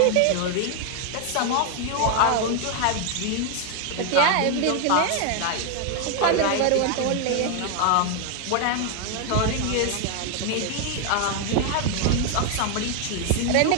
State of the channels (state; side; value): different; both; correlation 0.00